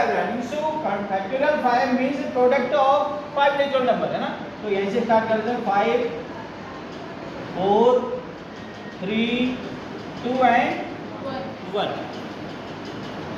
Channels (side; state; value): both; identical; correlation 1.00